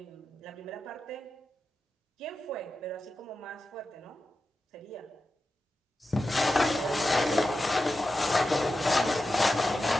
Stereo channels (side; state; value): both; normal; correlation 0.91